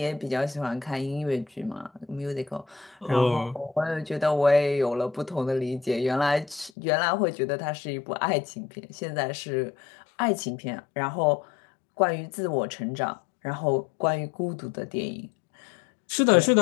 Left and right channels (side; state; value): right; drops out; at 6.7 s